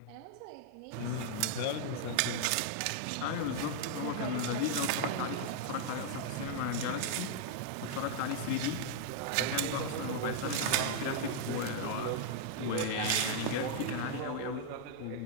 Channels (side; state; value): both; different; correlation -0.01